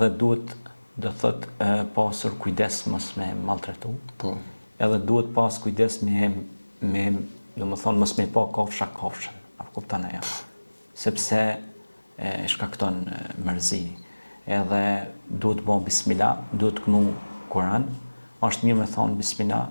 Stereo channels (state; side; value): inverted; both; correlation -1.00